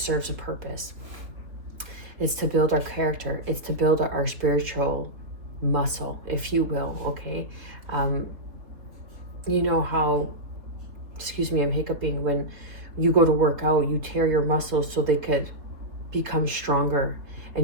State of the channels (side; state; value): left; late; 3.6 ms